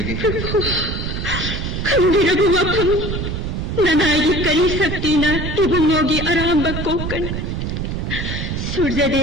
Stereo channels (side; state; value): right; noise; rumble, 3 dB below the sound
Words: खंदिरबु वफम ननायगी करी शक्तिना इबुंगोगी आरांब कोकन